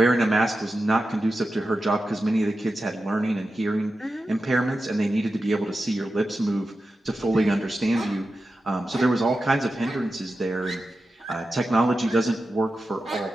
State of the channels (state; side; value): normal; both; correlation 0.91